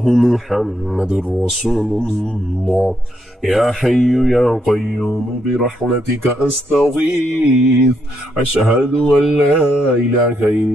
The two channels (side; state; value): both; normal; correlation 0.77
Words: محمد رسول الله. يا حي يا قيوم برحمتك أستغيث. أشهد أن لا إله